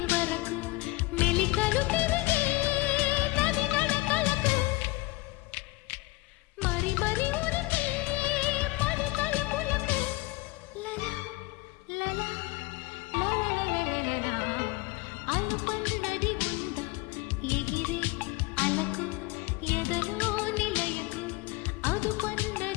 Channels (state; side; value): quieter; right; 21.5 dB